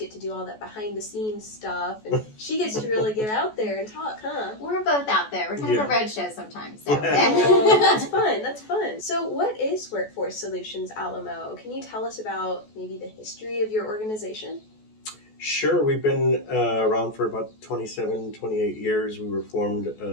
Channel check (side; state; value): right; late; 14 ms